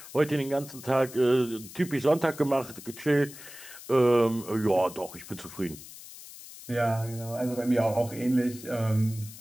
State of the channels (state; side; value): noise; left; hiss, 16 dB below the sound